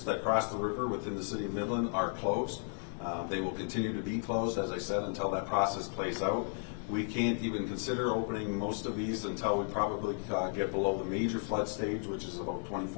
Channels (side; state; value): right; silent; 55 dB below the other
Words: that cross the river within the city of Midland are closed. They will continue to be closed, as I said, until that process plays out. We can't even consider opening most of these until we probably get below the major flood stage, which is about